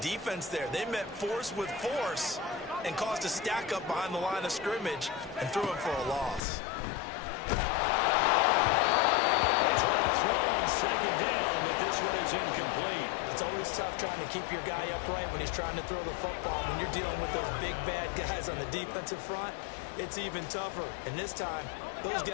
there? They met force with force and caused a stack up behind the line of scrimmage and threw him for a loss. They try to throw on 2nd down, but this one is incomplete. It's always tough trying to keep your guy upright when he's trying to throw the football. When you're dealing with those big, bad guys on the defensive front, it's even tougher. And this time, those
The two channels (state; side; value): drops out; right; at 6.4 s